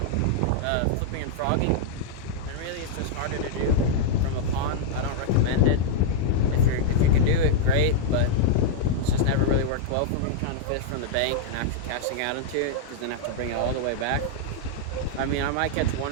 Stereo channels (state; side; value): different; both; correlation -0.02